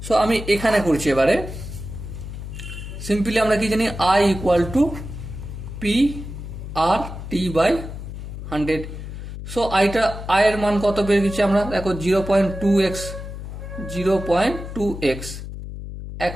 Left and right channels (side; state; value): left; noise; hum, 9 dB below the sound